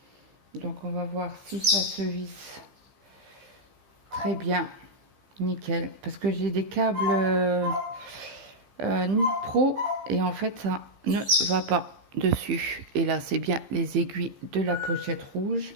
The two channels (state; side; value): late; left; 15 ms